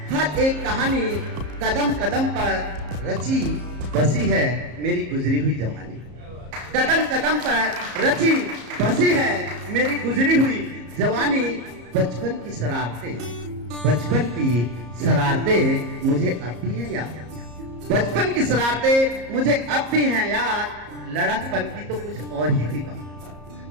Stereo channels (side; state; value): left; late; 34 ms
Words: हर एक कहानी। कदम कदम पर रची बसी है मेरी गुजरी हुई जवानी। कदम कदम पर रची बसी है मेरी गुजरी हुई जवानी। बचपन की शरारतें मुझे अब भी है याद। बचपन की शरारतें मुझे अब भी हैं याद। लड़कपन की तो कुछ और ही थी